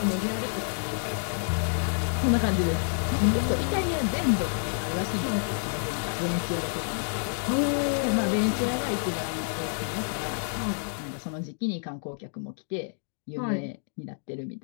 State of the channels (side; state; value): right; silent; digital silence